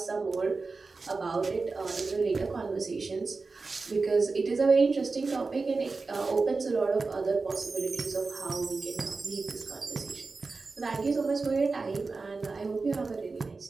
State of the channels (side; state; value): left; quieter; 4.0 dB